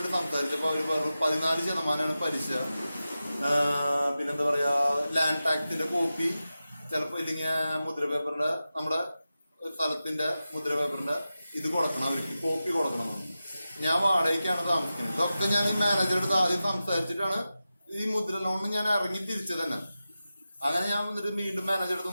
സംസാരിച്ചപ്പോ അവര് പറഞ്ഞു 14% പലിശ, പിന്നെന്താ പറയാ ലാൻഡ് ടാക്സിന്റെ കോപ്പി, ചിലപ്പോ ഇല്ലെങ്കിൽ മുദ്ര പേപ്പറിന്റെ നമ്മുടെ സ്ഥലത്തിന്റെ മുദ്ര പേപ്പറിന്റെ ഇത് കൊടുക്കണം, അവർക്ക് കോപ്പി കൊടുക്കണം. ഞാൻ വാടകയ്ക്കാണ് താമസിക്കുന്നത്. ഇതൊക്കെ ഞാൻ ഈ മാനേജറുടെ അടുത്ത് ആദ്യം സംസാരിച്ചിട്ടാണ് ഈ മുദ്ര ലോണിന് ഞാൻ ഇറങ്ങി തിരിച്ചത് തന്നെ. അങ്ങനെ ഞാൻ വന്നിട്ട് വീണ്ടും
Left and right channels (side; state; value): both; inverted; correlation -0.93